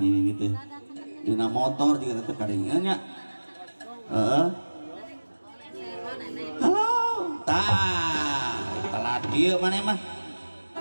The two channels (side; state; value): both; inverted; correlation -1.00